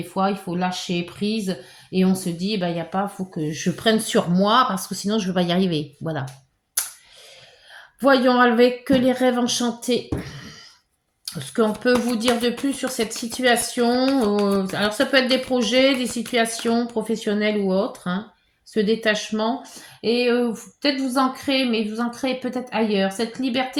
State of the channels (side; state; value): both; identical; correlation 1.00